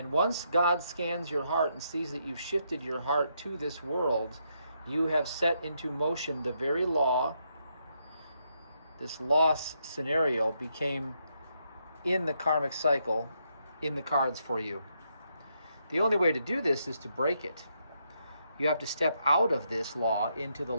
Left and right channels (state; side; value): inverted; both; correlation -0.78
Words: once God scans your heart and sees that you've shifted your heart to this world, you have set into motion the very law. This loss scenario became in the karmic cycle, in the cards for you. The only way to do this is to break it. You have to step out of this law into the